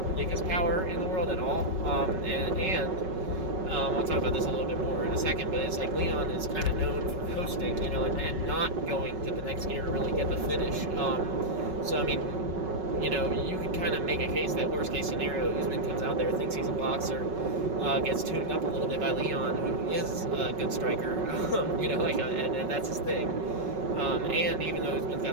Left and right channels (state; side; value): late; left; 5.4 ms